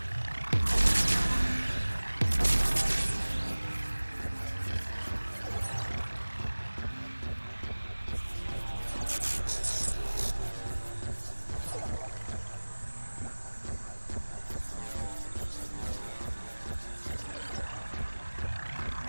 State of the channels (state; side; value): inverted; both; correlation -1.00